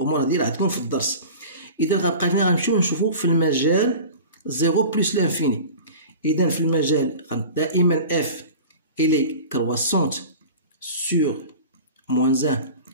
هادي راه عندكم في الدرس. اذا غنبقى هنا غنمشيو نشوفو في المجال 0 بلس لانفيني. اذا في المجال دائما f elle est croissante sur moins 1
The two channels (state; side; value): inverted; both; correlation -0.37